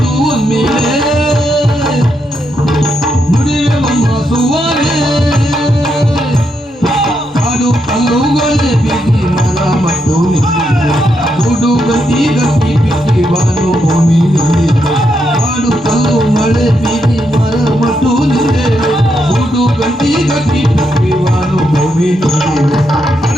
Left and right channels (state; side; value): normal; both; correlation 0.81